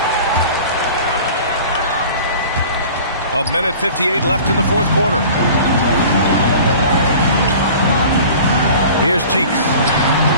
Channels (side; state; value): both; inverted; correlation -0.42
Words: A minute 58 left in the fourth quarter. Here's Cheeks.